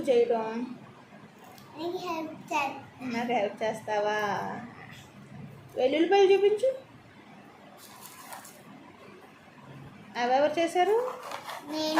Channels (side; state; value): both; identical; correlation 1.00